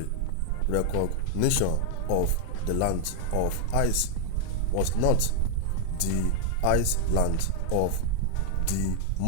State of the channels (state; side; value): different; both; correlation 0.00